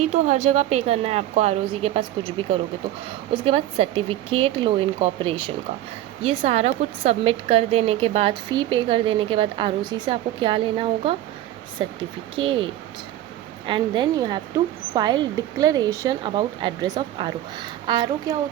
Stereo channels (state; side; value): quieter; left; 13.5 dB